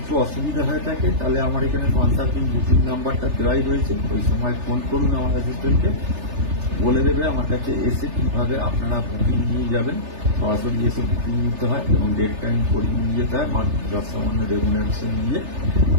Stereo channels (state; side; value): late; left; 3.3 ms